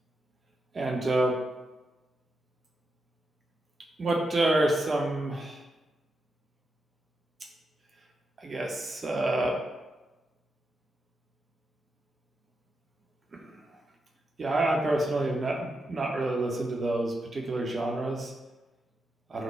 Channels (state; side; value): normal; both; correlation 0.85